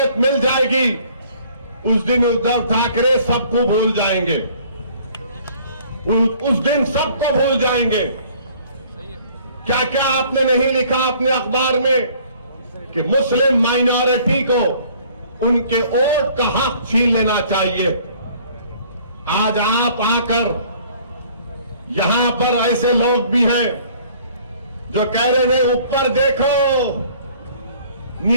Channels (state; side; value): inverted; both; correlation -0.56